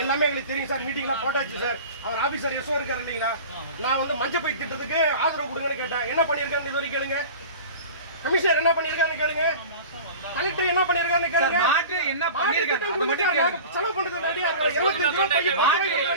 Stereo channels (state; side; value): inverted; both; correlation -0.37